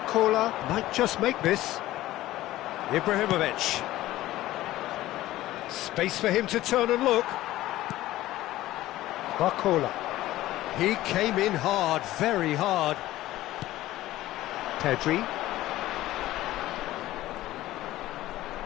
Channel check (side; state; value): right; quieter; 15.7 dB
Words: might just make this. Ibrahimovic. Space for him to turn and look. Barcola. He came in hard, very hard. Pedri.